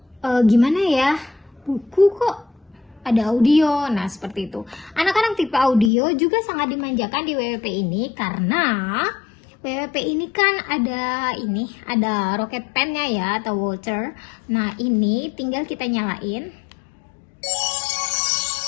Gimana ya? Buku kok ada audio. Nah, seperti itu. Anak-anak tipe audio juga sangat dimanjakan di WWP ini karena WWP ini kan ada rocket pen-nya ya, atau Walter. Nah, ini tinggal kita nyalain.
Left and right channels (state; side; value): drops out; right; at 5.9 s